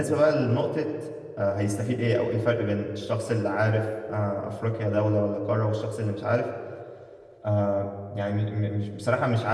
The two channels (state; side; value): identical; both; correlation 1.00